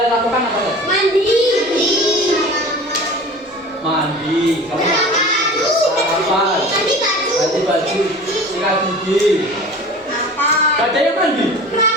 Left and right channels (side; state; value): both; normal; correlation 0.39